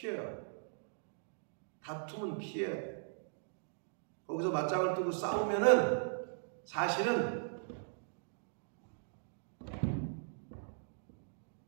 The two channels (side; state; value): left; silent; digital silence